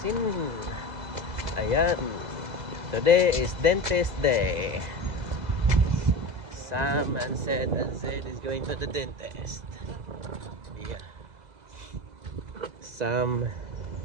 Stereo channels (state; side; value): late; left; 2.0 ms